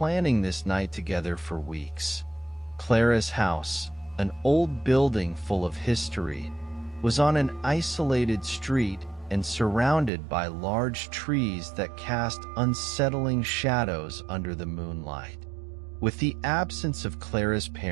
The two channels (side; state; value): left; drops out; at 10.1 s